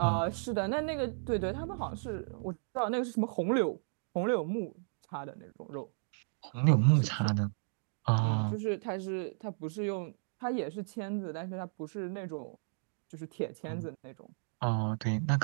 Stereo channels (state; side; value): silent; left; digital silence